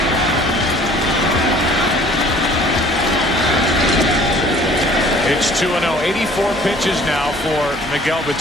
It's 2-0. 84 pitches now for Miguel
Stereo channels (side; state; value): both; normal; correlation 0.52